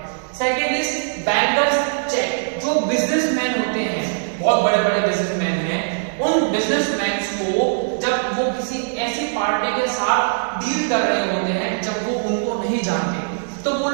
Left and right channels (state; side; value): silent; left; digital silence